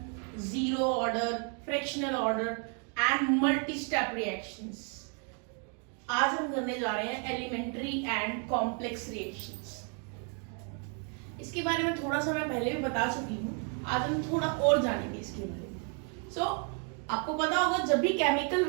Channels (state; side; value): quieter; left; 39.7 dB